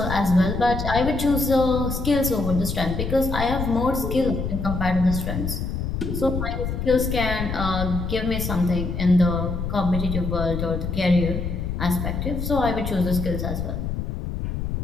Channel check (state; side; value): noise; left; rumble, 3 dB below the sound